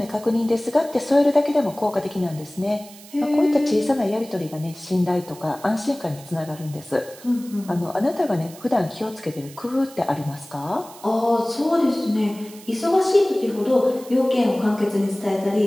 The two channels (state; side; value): noise; right; hiss, 20 dB below the sound